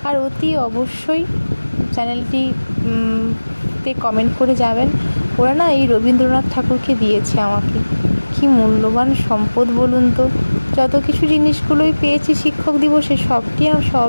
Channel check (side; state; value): both; inverted; correlation -1.00